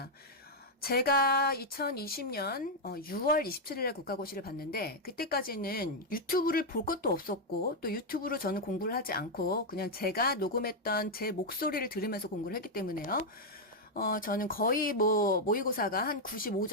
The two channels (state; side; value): normal; both; correlation 0.00